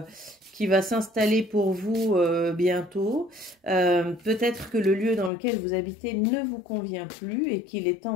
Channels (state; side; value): drops out; right; at 5.3 s